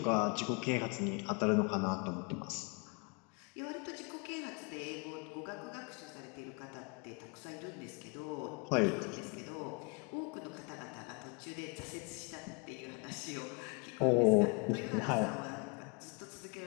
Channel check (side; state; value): right; quieter; 32.7 dB